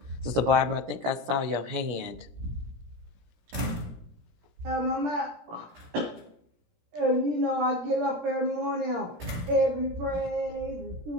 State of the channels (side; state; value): left; late; 17 ms